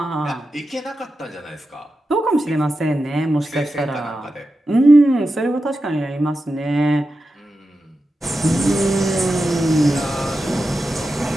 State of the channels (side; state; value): both; normal; correlation 0.91